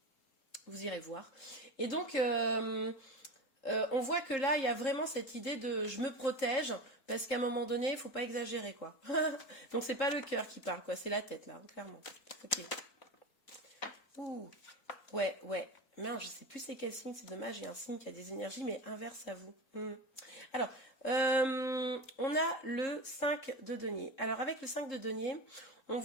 vous irez voir. Et donc, on voit que là, il y a vraiment cette idée de je me protège, parce qu'à un moment donné, il ne faut pas exagérer, quoi. Donc, c'est pas le cœur qui parle, quoi, c'est la tête, là, hein, clairement. Ok. Ouh, ouais. Mince, je sais plus c'est quel signe, c'est dommage, j'ai un signe qui a des énergies, mais inverse à vous. Alors, on a le 5 de denier. Alors, avec le 5 de denier, on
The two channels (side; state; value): right; late; 3.7 ms